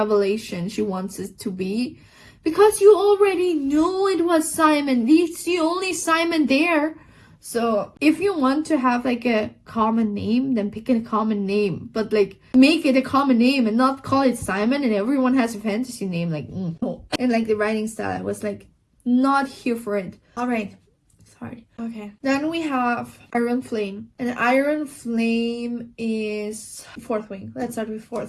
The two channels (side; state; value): both; identical; correlation 1.00